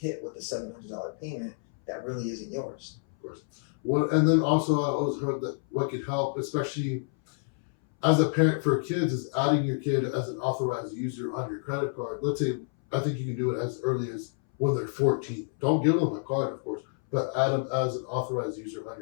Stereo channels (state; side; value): silent; right; 59 dB below the other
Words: with a $700 payment that really isn't yours. Of course. And then also I always heard that what could help, especially as a parent for kids, is adding your kid as an authorized user on your credit card. Let's say, I think you can do it as early as when they're 14. Don't give them a card, of course, but add them as an authorized user on